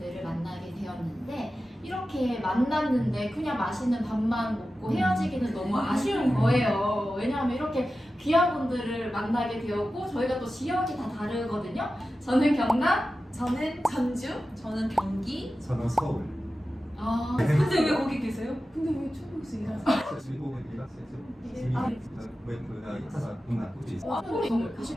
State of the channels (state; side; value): normal; both; correlation 0.93